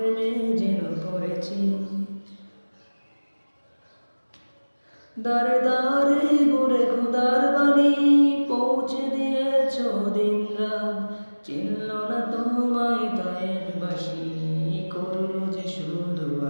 যেন পড়েছি। দারে দারে ঘুরে খোদার বাণী, পৌঁছে দিয়েছ দিন রাত। চিনল না তোমায় হাসি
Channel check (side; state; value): both; inverted; correlation -1.00